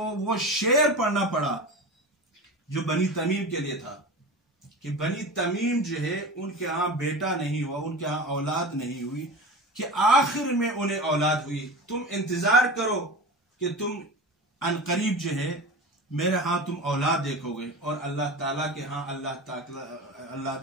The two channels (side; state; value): both; normal; correlation 0.30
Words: وہ شعر پڑھنا پڑا جو بنی تمیم کے لیے تھا کہ بنی تمیم جو ہے ان کے ہاں بیٹا نہیں ہوا، ان کے ہاں اولاد نہیں ہوئی، کہ آخر میں انہیں اولاد ہوئی. تم انتظار کرو کہ تم عنقریب جو ہے میرے ہاں تم اولاد دیکھو گے. اور اللہ تعالیٰ کے ہاں اللہ